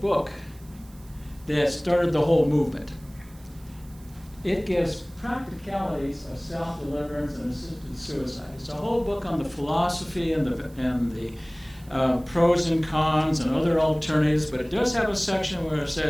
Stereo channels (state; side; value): noise; right; hiss, 26 dB below the sound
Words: that started the whole movement. It gives practicalities of self-deliverance and assisted suicide. It's a whole book on the philosophy and the pros and cons and other alternatives, but it does have a section where it